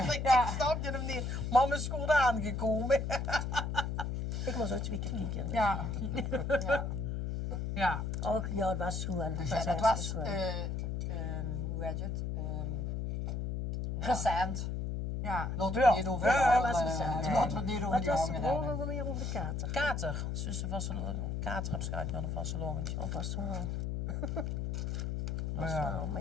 ik Ja. snap je hem niet. Man is goed aangekomen. Ik moest ook 2 keer kijken. Ja, Ja. Och, ja, het was goed. En Dus ja, dat was, hoe heet het? Recent. ja. Laten we het niet over Ja, die dat was andere- recent. laten we het niet over Wat die was de anderen hebben. vroeger weer over de kater? Kater. Zussen van kater heb schijt aan een vastelogentje. Of was het wel? Was Ja. het wel, maar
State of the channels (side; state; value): left; noise; hum, 2 dB below the sound